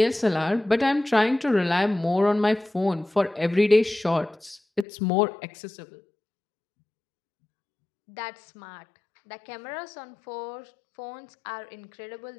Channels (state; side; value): drops out; right; at 4.9 s